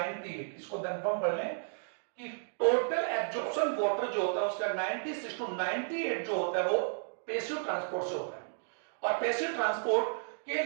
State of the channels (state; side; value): silent; left; digital silence